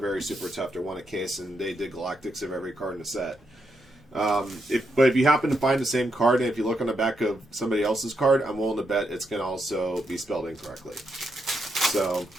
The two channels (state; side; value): normal; both; correlation 0.81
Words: super tough to win a case, and they did Galactics of every card in the set. But if you happen to find the same card, and if you look on the back of somebody else's card, I'm willing to bet it's going to also be spelled incorrectly. So